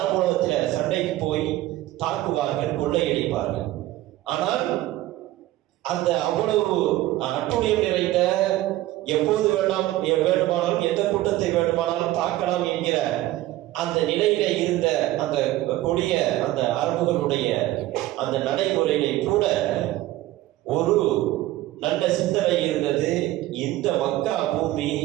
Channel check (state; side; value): quieter; left; 16.0 dB